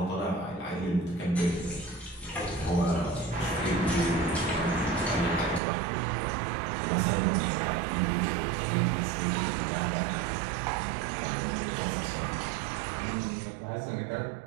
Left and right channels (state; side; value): drops out; left; at 5.6 s